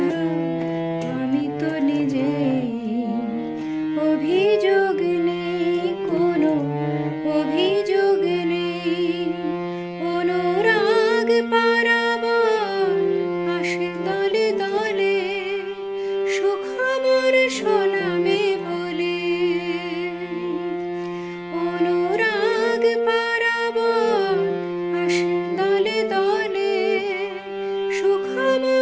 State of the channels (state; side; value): identical; both; correlation 1.00